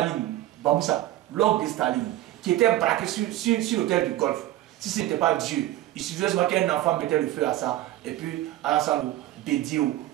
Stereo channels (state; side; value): quieter; left; 14.9 dB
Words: Bamoussa, l'orgue de Staline, qui était braqué sur l'hôtel du Golfe. Si ce n'était pas Dieu, il suffisait seulement qu'un enfant mettait le feu à ça, et puis Alassane, Bédio,